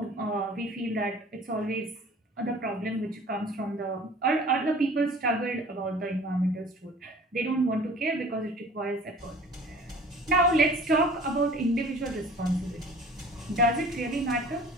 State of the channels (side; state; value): both; normal; correlation 0.46